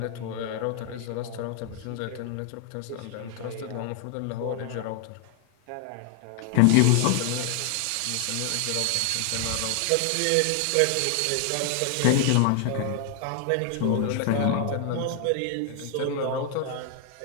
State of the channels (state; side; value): different; both; correlation 0.00